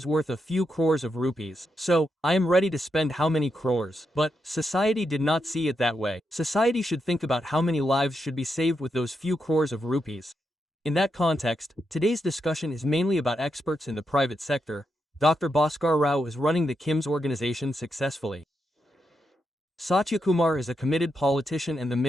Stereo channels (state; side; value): normal; both; correlation 0.84